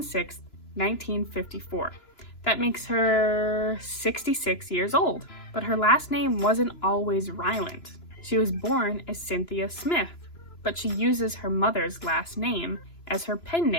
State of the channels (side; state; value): right; late; 3.0 ms